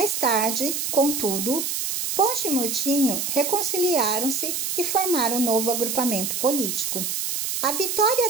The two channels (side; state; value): right; noise; hiss, 2 dB below the sound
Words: tarde, contudo, Ponte e Murtinho reconciliaram-se e formaram um novo agrupamento político. A vitória